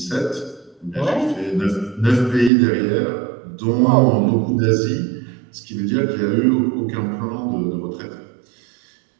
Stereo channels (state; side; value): drops out; left; at 2.5 s